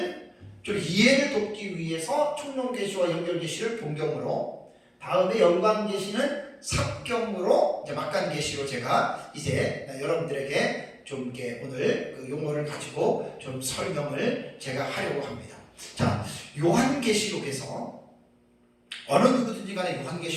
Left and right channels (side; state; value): both; identical; correlation 1.00